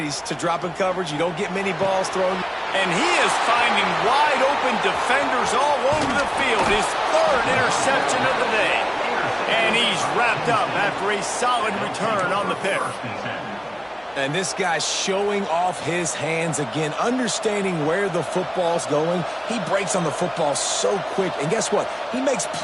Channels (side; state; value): both; identical; correlation 1.00